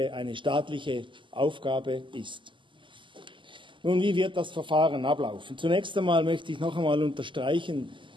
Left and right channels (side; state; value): left; late; 0.24 ms